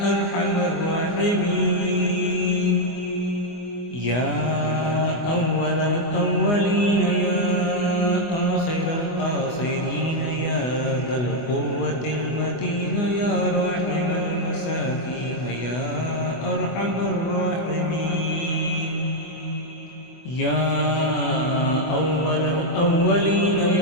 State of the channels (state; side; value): late; right; 24 ms